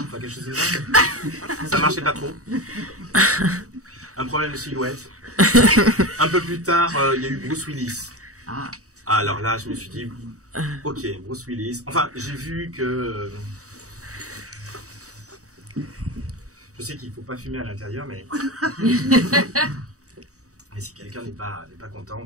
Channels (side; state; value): left; late; 0.66 ms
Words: enfin quelque chose de ça. Ça marchait pas trop. Un problème de silhouette. Un peu plus tard, il y a eu Bruce Willis. Alors là, je me suis dit, ok, Bruce Willis. Enfin, j'ai vu que... Je sais qu'il ne faut pas fumer à l'intérieur, mais... Mais si quelqu'un n'est pas content,